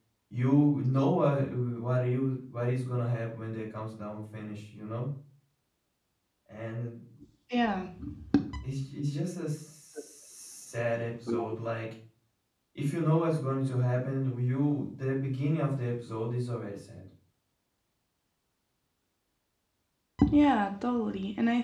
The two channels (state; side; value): identical; both; correlation 1.00